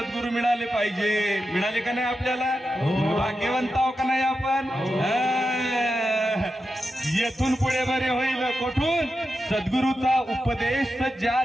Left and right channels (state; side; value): normal; both; correlation 0.89